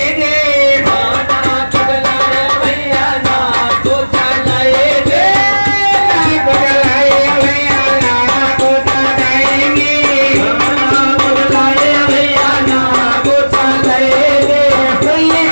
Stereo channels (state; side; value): inverted; both; correlation -1.00